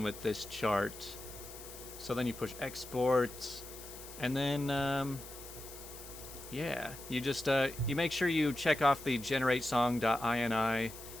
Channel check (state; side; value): noise; left; hiss, 14 dB below the sound